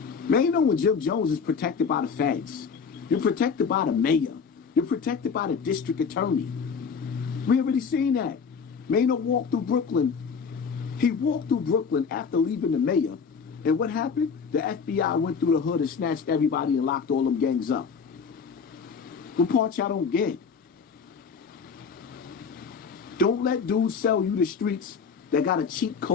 Man, you know when Jim Jones is protected by the feds. You're protected by the mayor. You're protected by the district attorney. We already seen that. Man, don't walk through Brooklyn He walked through Brooklyn after leaving the mayor, and what happened? The FBI went through the hood and snatched everybody and locked all them gangs up. What part y'all don't get? Don't let dudes sell you the streets that got a cheat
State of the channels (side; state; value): right; quieter; 5.8 dB